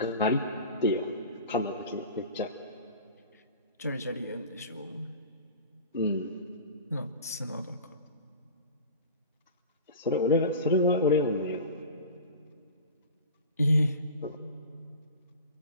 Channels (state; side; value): inverted; both; correlation -0.36